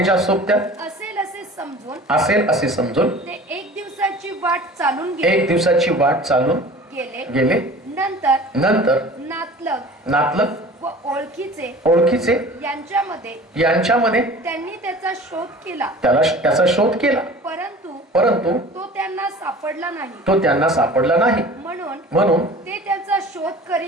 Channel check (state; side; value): normal; both; correlation 0.42